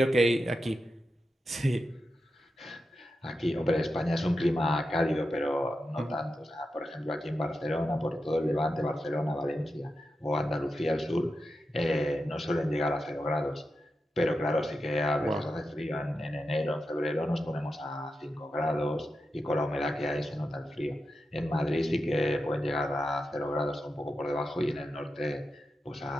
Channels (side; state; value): both; normal; correlation 0.89